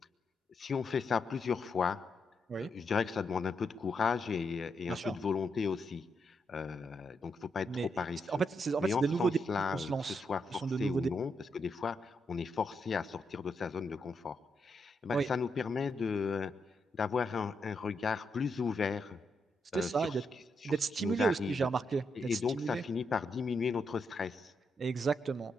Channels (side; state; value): both; normal; correlation 0.81